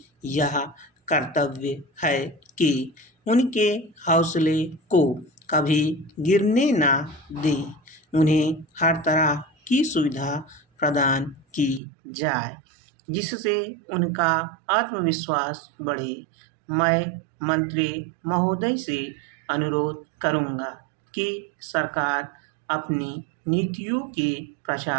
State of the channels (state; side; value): drops out; left; at 11.8 s